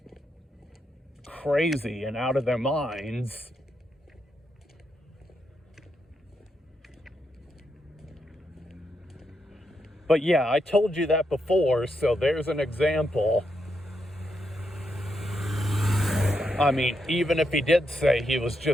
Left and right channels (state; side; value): normal; both; correlation 0.82